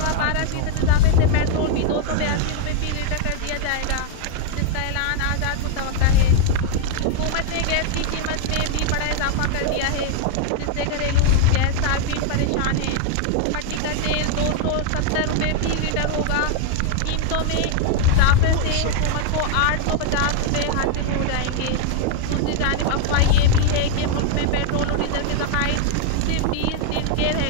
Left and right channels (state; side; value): different; both; correlation 0.00